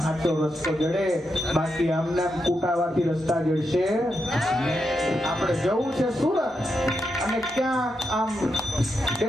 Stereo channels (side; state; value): both; normal; correlation 0.84